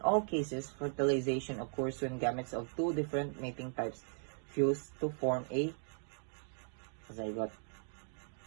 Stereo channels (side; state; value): left; silent; 53 dB below the other